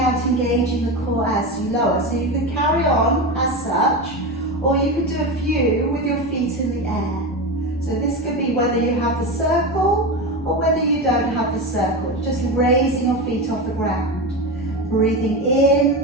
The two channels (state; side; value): normal; both; correlation 0.20